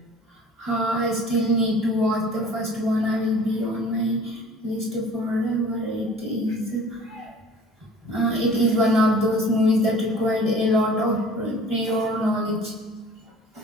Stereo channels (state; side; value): normal; both; correlation 0.47